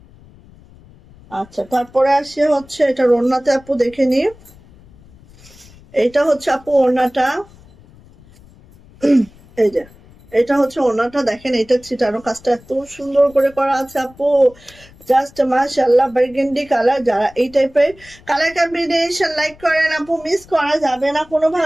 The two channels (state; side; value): noise; left; rumble, 25 dB below the sound